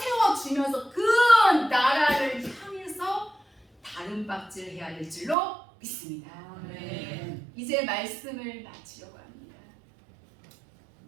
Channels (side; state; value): left; drops out; at 5.4 s